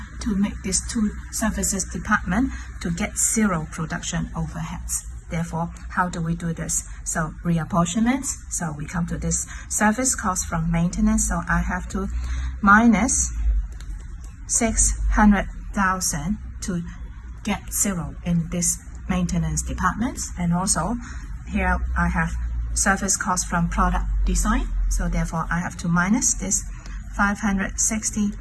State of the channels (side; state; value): both; identical; correlation 1.00